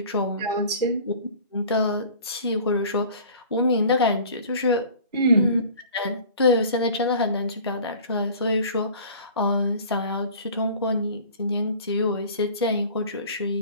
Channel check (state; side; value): inverted; both; correlation -0.44